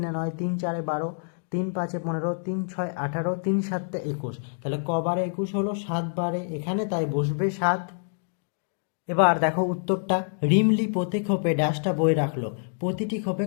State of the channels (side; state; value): right; silent; digital silence